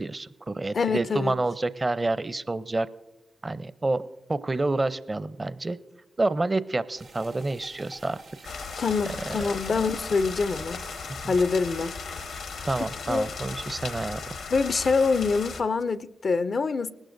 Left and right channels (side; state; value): both; normal; correlation 0.89